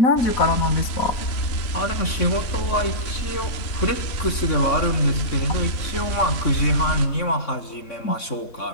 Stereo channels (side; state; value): right; late; 3.6 ms